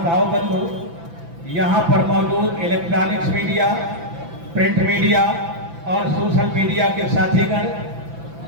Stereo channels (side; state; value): left; late; 6.0 ms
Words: भाव बंधु, यहाँ पर मौजूद इलेक्ट्रॉनिक्स मीडिया, प्रिंट मीडिया और सोशल मीडिया के साथीगण,